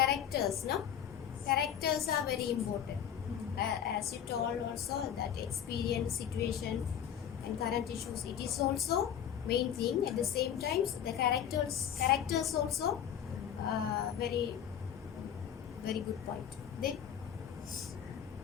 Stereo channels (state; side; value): quieter; right; 9.2 dB